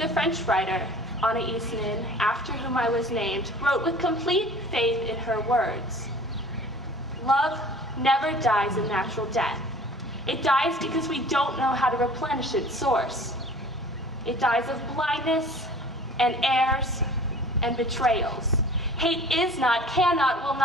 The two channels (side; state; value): both; normal; correlation 0.46